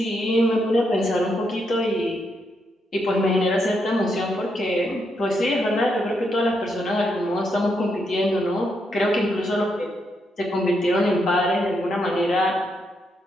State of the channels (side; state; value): both; normal; correlation 0.80